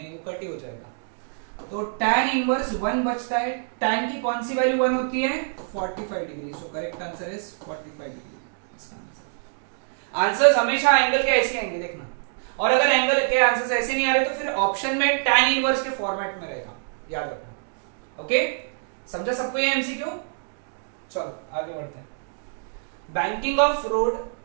वो कट ही हो जाएगा। तो tan इनवर्स 1 बचता है। tan की कौन सी वैल्यू 1 होती है 45 degree. So correct answer is 45 degree. Answers हमेशा एंगल के ऐसे आएंगे देखना, और अगर एंगल के आंसर्स ऐसे नहीं आ रहे तो फिर ऑप्शन में tan इनवर्स के फॉर्मेट में रहेगा, याद रखना। ओके, समझा सबको ये एमसीक्यू? चलो आगे बढ़ते हैं। Banking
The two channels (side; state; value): left; silent; 62 dB below the other